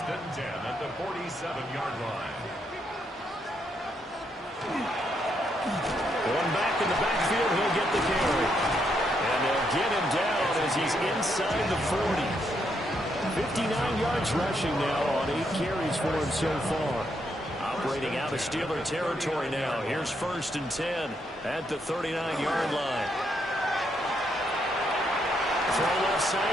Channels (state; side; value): normal; both; correlation 0.77